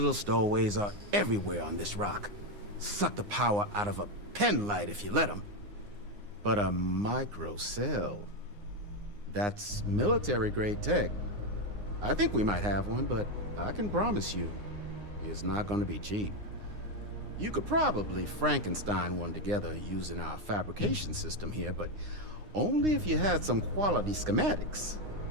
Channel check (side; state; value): left; late; 9.7 ms